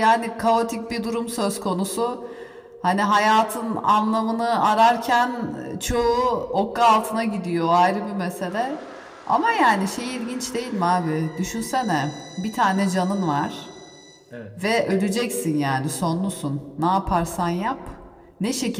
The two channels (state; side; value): identical; both; correlation 1.00